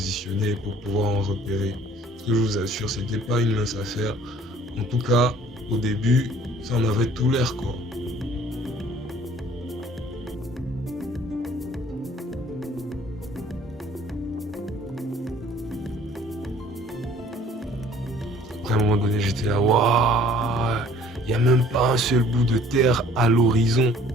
pour pouvoir en repérer. Ce que je vous assure, c'était pas une mince affaire. En tout cas, au début, ça en avait tout l'air quoi. Après, à un moment donné, j'étais là, waouh, il n'y a même pas un seul bout de terre à l'horizon.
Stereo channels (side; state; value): both; normal; correlation 0.54